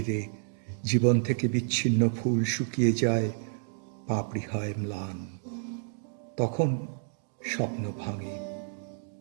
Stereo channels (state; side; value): silent; left; digital silence